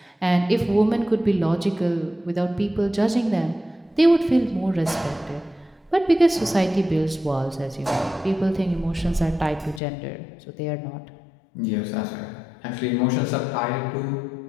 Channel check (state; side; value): drops out; right; at 9.8 s